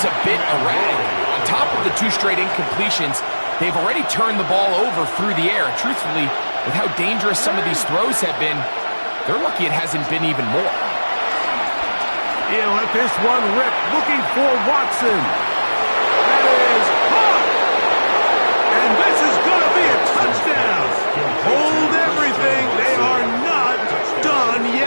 a bit erratic. On top of the 2 straight incompletions, they've already turned the ball over through the air. And truthfully, with how dangerous some of these throws have been, they're lucky it hasn't been even more. He'll let this one rip, looking for Watson. That is caught. And this is going to be a touchdown. Hold everything. They are not done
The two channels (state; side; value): inverted; both; correlation -1.00